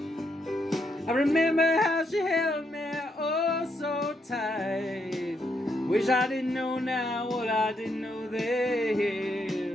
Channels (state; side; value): normal; both; correlation 0.77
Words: I remember how she held me oh so tight. Wish I didn't know now what I didn't know then.